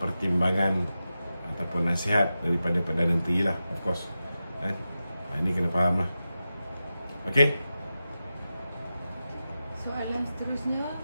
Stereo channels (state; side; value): inverted; both; correlation -0.92